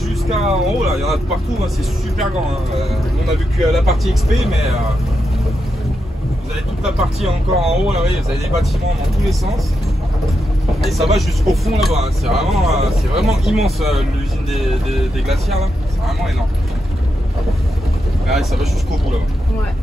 en haut, là, il y en a de partout, hein, c'est super grand. Hein. On a vu que la partie XP, mais vous avez toute la partie encore en haut, là, vous voyez, vous avez des bâtiments dans tous les sens. Et ça va jusqu'au fond là-bas, hein. C'est vraiment immense l'usine des glacières là, c'est vraiment énorme. Là, ça va jusqu'au bout là-bas. Ouais.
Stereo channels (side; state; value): both; normal; correlation 0.85